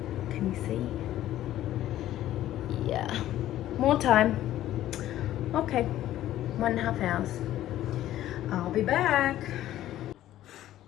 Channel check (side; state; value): right; quieter; 13.3 dB